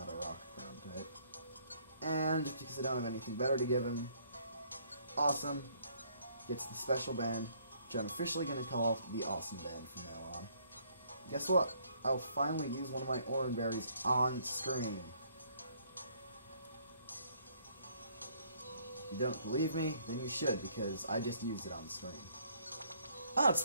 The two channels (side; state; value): both; inverted; correlation -0.65